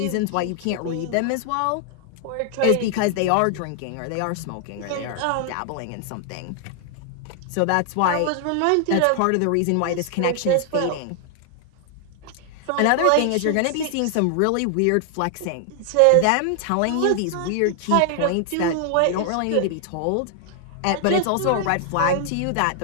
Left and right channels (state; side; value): different; both; correlation 0.00